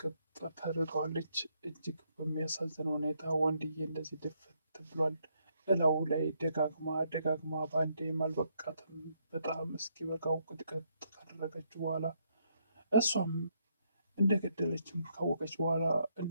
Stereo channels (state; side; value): inverted; both; correlation -0.74